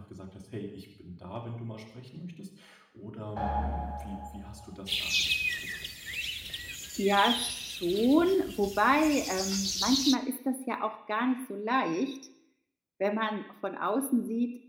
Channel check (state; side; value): identical; both; correlation 1.00